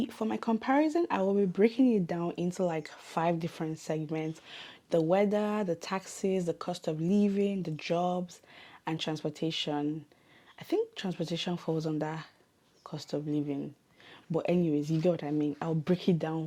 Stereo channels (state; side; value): identical; both; correlation 1.00